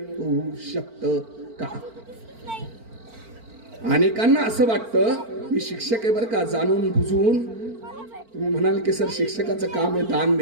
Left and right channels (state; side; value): late; left; 4.4 ms